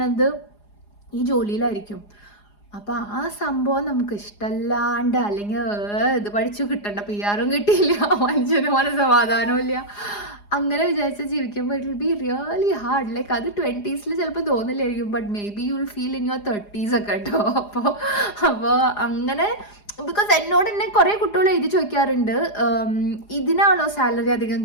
ഈ ജോലിയിലായിരിക്കും. അപ്പോൾ ആ സംഭവം നമുക്ക് ഇഷ്ടമല്ലാണ്ട് അല്ലെങ്കിൽ ഇത് പഠിച്ചു കിട്ടണ്ട PR കിട്ടിയില്ല, മനുഷ്യന് മനസ്സമാധാനവും ഇല്ല, അങ്ങനെ വിചാരിച്ച് ജീവിക്കുമ്പോൾ it will be really hard. Like അത് 20s ചിലപ്പോൾ തോന്നില്ലായിരിക്കും, but maybe you will feel in your 30s ഒക്കെ കേട്ടോ. അപ്പോൾ അങ്ങനെ ബിക്കോസ് എന്നോട് തന്നെ കുറേ കുട്ടികൾ എഴുതി ചോദിക്കാറുണ്ട്, ഇതിനാണോ സാലറി അധികം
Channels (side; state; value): right; late; 4.9 ms